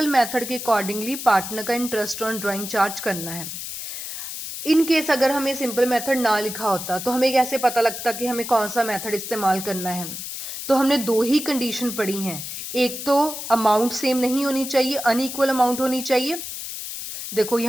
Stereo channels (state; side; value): noise; left; hiss, 7 dB below the sound